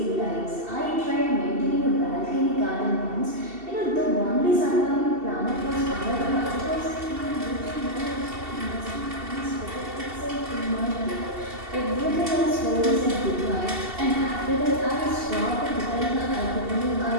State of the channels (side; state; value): left; late; 2.7 ms